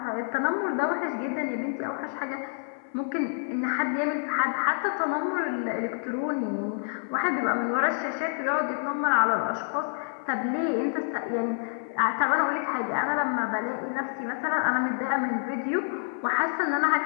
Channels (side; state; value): right; silent; 59 dB below the other